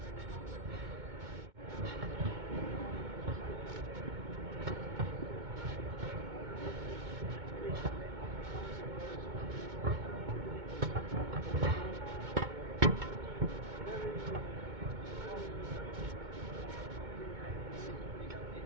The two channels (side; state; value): left; late; 2.2 ms